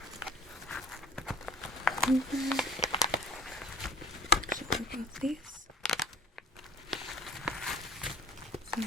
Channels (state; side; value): normal; both; correlation 0.44